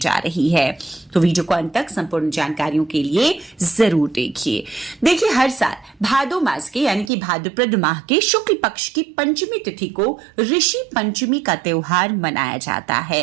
रही है। तो वीडियो को अंत तक संपूर्ण जानकारियों के लिए जरूर देखिए। हर साल भादो मास के यानी कि भाद्रपद माह के शुक्ल पक्ष की पंचमी तिथि को ऋषि पंचमी का त्योहार मनाया जाता है।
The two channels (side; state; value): left; drops out; at 7.1 s